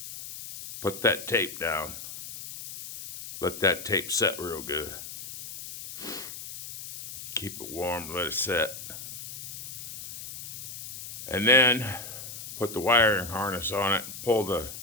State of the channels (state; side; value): noise; left; hiss, 10 dB below the sound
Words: Put that tape down. Let that tape set real good. Keep it warm, let it set. And then put the wiring harness on it, pull the